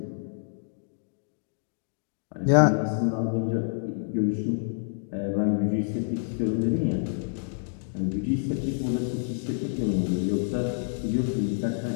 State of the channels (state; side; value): silent; right; digital silence